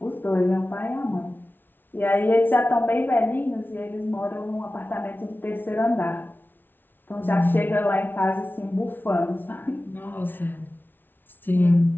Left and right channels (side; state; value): right; late; 0.096 ms